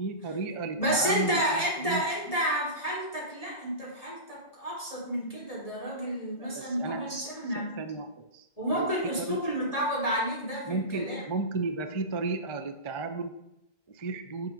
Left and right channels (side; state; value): right; late; 1.7 ms